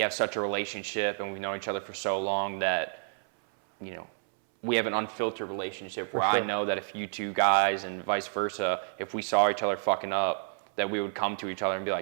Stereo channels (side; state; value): left; silent; 58 dB below the other